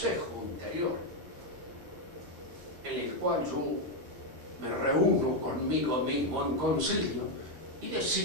interior, en el cual yo me reúno conmigo mismo en concilio y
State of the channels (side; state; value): left; late; 12 ms